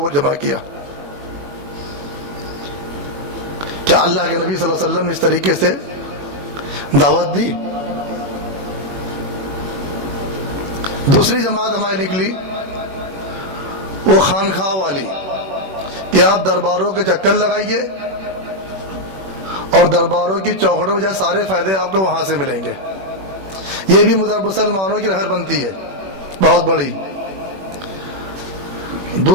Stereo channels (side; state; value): left; late; 21 ms